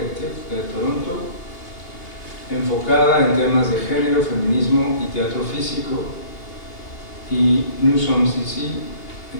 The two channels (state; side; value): late; right; 2.8 ms